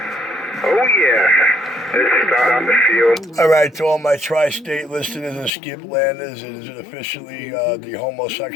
Oh, yeah. Let's start on the field. All right, to all my tri-state listeners and skip landers, it is officially the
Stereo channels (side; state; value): right; drops out; at 5.5 s